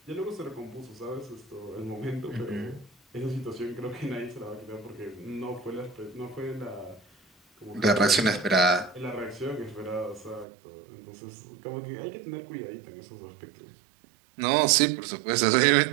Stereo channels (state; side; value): drops out; left; at 10.5 s